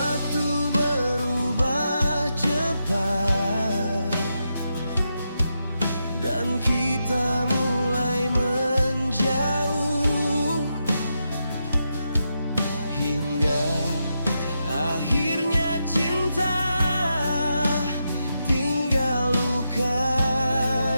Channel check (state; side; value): inverted; both; correlation -0.85